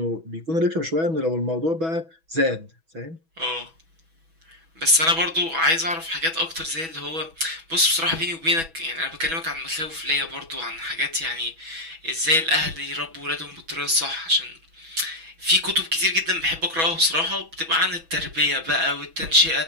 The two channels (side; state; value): left; late; 6.1 ms